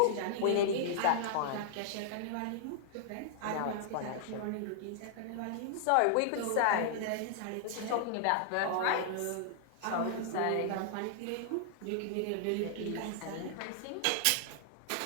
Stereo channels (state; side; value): different; both; correlation -0.01